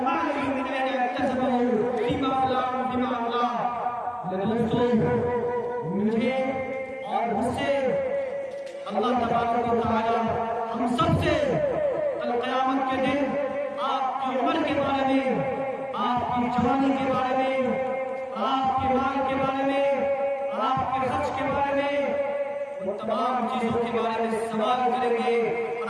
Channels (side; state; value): both; identical; correlation 1.00